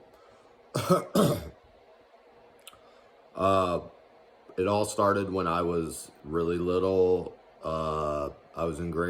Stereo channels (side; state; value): both; identical; correlation 1.00